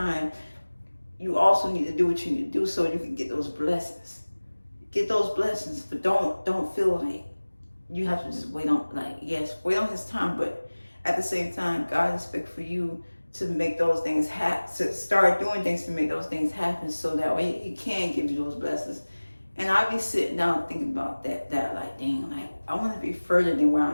you also need to do what you need to do so you can get those blessings. Get those blessings, but don't feel like you have to just wait on, like, yes, wait on his time, but at the same time, God expects for you to make those things happen, to start doing things to make those things happen, so that way he can give you those blessings. And I be sitting down thinking about that like, dang, like I want to be further than where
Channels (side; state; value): both; inverted; correlation -1.00